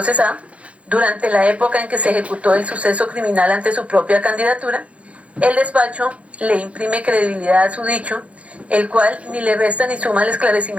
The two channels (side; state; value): left; late; 0.063 ms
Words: durante la época en que se ejecutó el suceso criminal ante su propia candidatura, el despacho le imprime credibilidad a su dicho, el cual ni le resta ni suma al